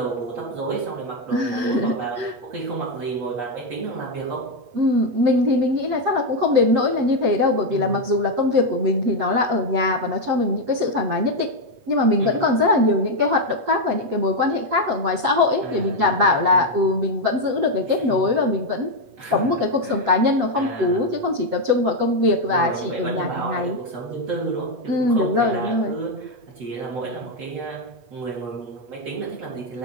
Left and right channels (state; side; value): late; left; 8.3 ms